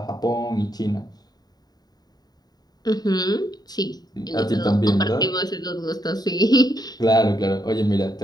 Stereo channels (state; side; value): late; right; 0.19 ms